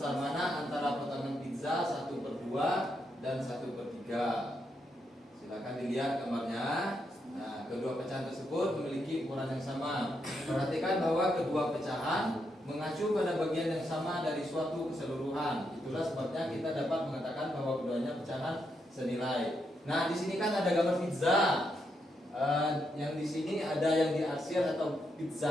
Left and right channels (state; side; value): normal; both; correlation 0.81